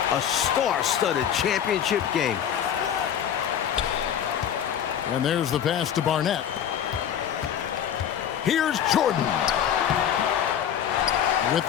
A star-studded championship game. And there's the pass to Barnett. Here's Jordan. With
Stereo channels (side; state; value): right; quieter; 9.3 dB